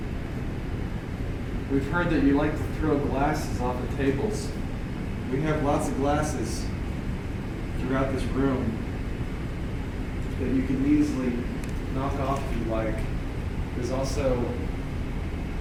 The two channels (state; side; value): identical; both; correlation 1.00